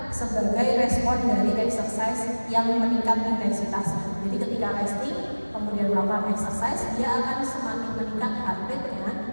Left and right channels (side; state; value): both; inverted; correlation -1.00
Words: sebagai respon dari exercise yang meningkat intensitasnya. Jadi ketika resting kemudian melakukan exercise, dia akan semakin meningkat heart rate-nya